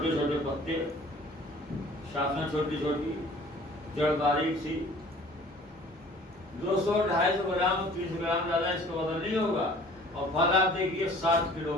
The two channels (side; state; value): both; normal; correlation 0.50